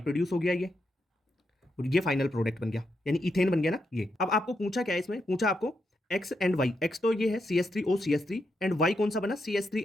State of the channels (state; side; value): normal; both; correlation 0.83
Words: प्रोड्यूस हो गया ये, और ये फाइनल प्रोडक्ट बन गया, यानी इथेन बन गया ना ये। अब आपको पूछा क्या है इसमें, पूछा आपको एक्स एंड वाई। एक्स तो ये है CH3O CH3 एंड वाई कौन सा बना,